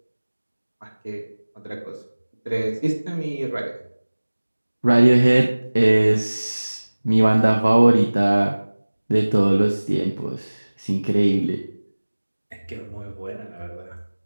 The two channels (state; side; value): inverted; both; correlation -1.00